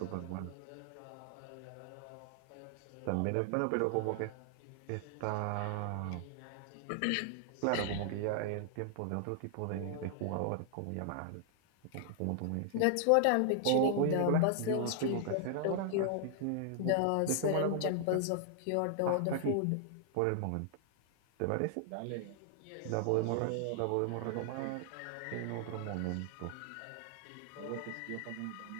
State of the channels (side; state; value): both; different; correlation 0.00